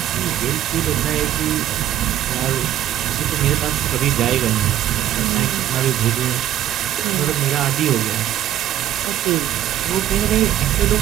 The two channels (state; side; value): quieter; left; 12.1 dB